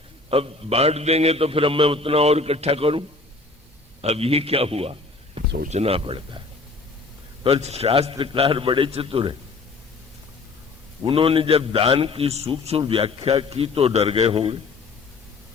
अब बांट देंगे तो फिर अब मैं उतना और इकट्ठा करूं। अब ये क्या हुआ, सोचना पड़ता है। पर शास्त्रकार बड़े चतुर हैं, उन्होंने जब दान की सूक्ष्म व्याख्या की तो डर गए होंगे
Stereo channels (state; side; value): quieter; right; 3.7 dB